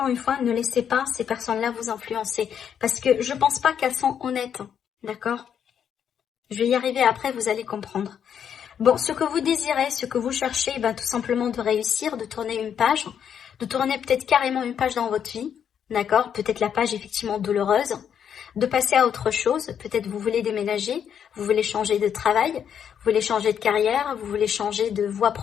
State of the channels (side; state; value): right; quieter; 8.4 dB